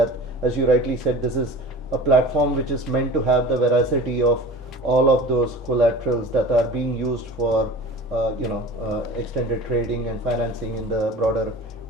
as you rightly said, this is a platform which is meant to have the veracity of all of those collaterals that are being used for extended trading and financing in the broader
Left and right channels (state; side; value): normal; both; correlation 0.38